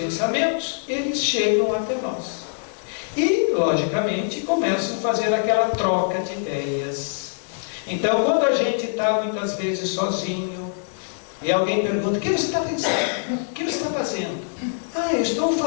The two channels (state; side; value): silent; right; 63 dB below the other